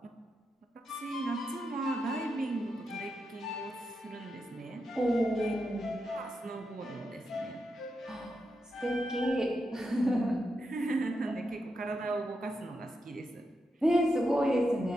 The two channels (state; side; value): normal; both; correlation 0.85